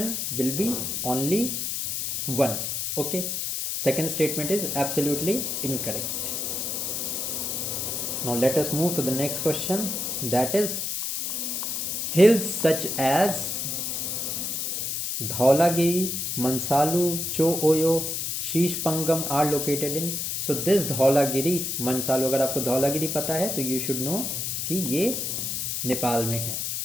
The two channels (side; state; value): left; noise; hiss, 2 dB below the sound